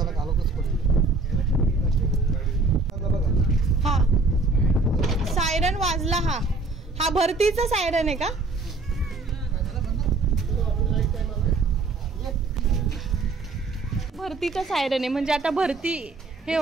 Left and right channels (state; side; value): quieter; left; 3.6 dB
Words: हा, सायरन वाजला. हा भरतीचा सायरन आहे का? भरतीचा सायरन आहे म्हणजे आता भरती हे